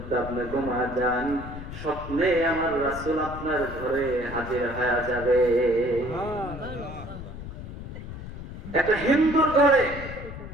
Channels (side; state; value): left; noise; rumble, 10 dB below the sound